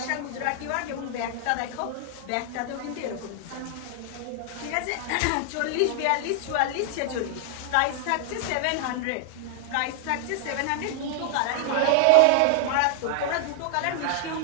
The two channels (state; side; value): different; both; correlation 0.00